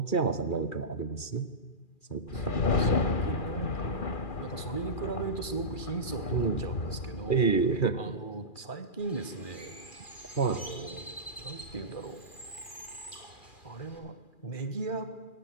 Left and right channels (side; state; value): right; late; 2.4 ms